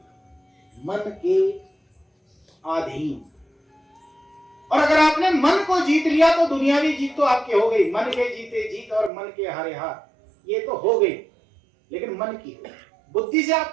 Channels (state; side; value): drops out; left; at 9.1 s